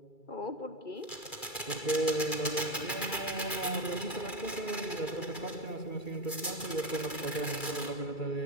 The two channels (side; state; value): right; late; 2.3 ms